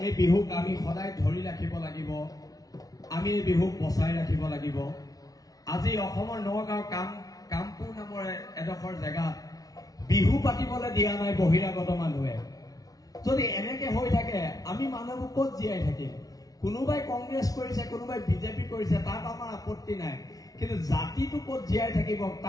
এই বিহুক আমি সদায় ধৰি ৰাখিব লাগিব, আমি এই বিহুক বচাই ৰাখিব লাগিব। আজি অসমৰ নগাঁও কামপুৰ নামৰ এডোখৰ জেগাত বিহু পাতিবলৈ দিয়া নাই বহিৰাগত মানুহে। যদি এনেকে হৈ থাকে আমি মানুহবোৰ ক'ত জীয়াই থাকিম? কোনোবাই কংগ্ৰেছ কৰিছে, কোনোবাই বিজেপি কৰিছে, তাত আমাৰ আপত্তি নাই, কিন্তু জাতিটো ক'ত জীয়াই থাকিব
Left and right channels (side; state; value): right; late; 0.18 ms